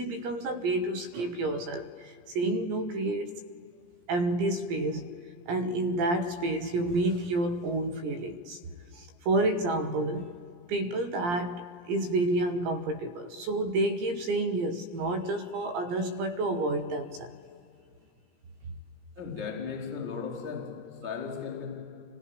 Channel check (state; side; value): late; left; 17 ms